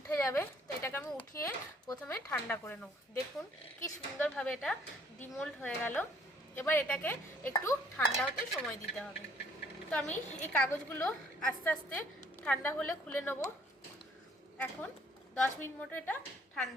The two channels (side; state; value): both; normal; correlation 0.61